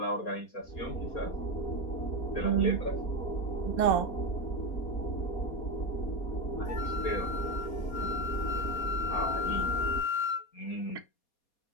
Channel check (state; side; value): late; right; 4.2 ms